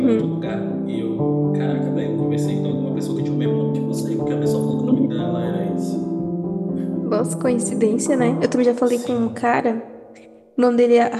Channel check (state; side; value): identical; both; correlation 1.00